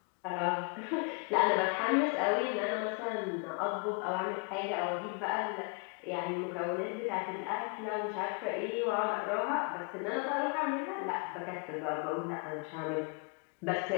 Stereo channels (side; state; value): right; quieter; 35.4 dB